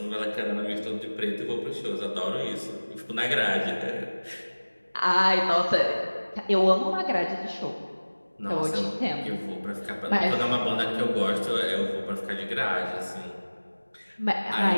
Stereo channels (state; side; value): inverted; both; correlation -1.00